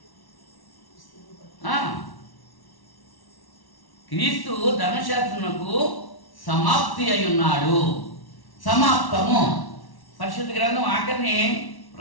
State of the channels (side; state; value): right; late; 1.1 ms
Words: క్రీస్తు ధర్మశాస్త్రమునకు సమాప్తి అయి ఉన్నాడు. సమాప్తము. పరిశుద్ధ గ్రంథం ఆఖరిని